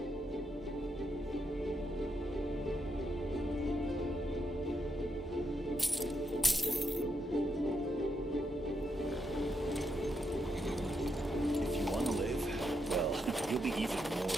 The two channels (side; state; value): both; normal; correlation 0.81